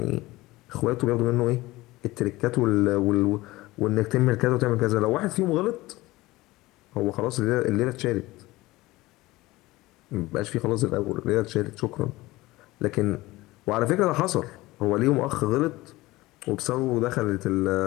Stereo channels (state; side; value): quieter; right; 19.3 dB